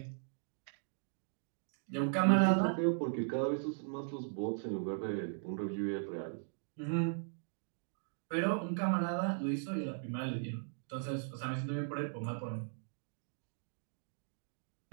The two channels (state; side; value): silent; left; digital silence